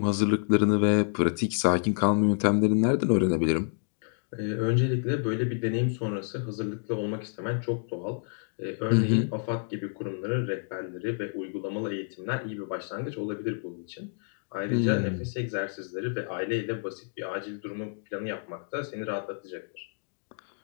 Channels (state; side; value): silent; right; digital silence